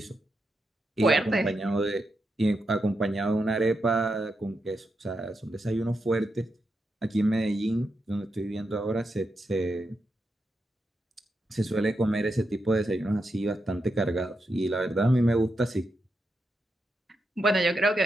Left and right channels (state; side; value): normal; both; correlation 0.85